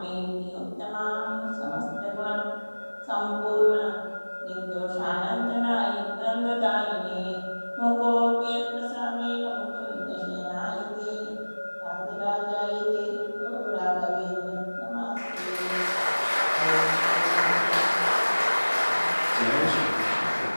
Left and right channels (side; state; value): both; inverted; correlation -1.00